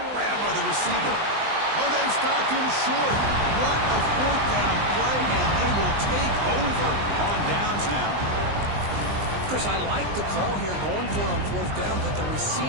Grabbed by the receiver. Oh, they stopped him short. What a fourth down play, and they will take over on downs now. Chris, I like the call here going for it on fourth down, but the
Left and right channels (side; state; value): left; late; 20 ms